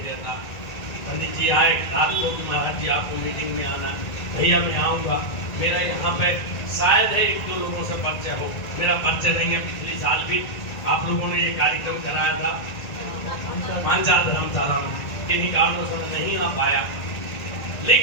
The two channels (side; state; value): right; late; 1.8 ms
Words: रहता। पंडित जी आए रात को कि महाराज जी आपको मीटिंग में आना, भैया मैं आऊँगा। मेरा यहाँ पे शायद है एक दो लोगों से परिचय हो, मेरा परिचय नहीं है। पिछले साल भी आप लोगों ने ये कार्यक्रम कराया था मानसा धर्मशाला में, किन्हीं कारणों से मैं नहीं आ पाया।